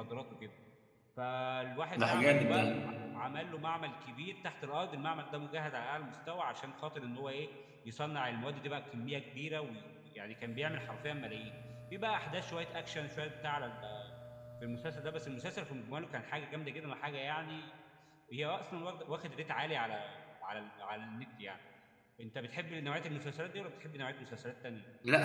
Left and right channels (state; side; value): identical; both; correlation 1.00